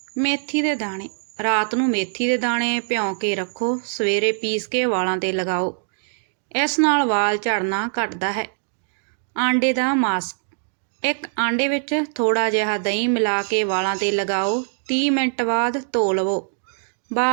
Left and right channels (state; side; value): silent; left; digital silence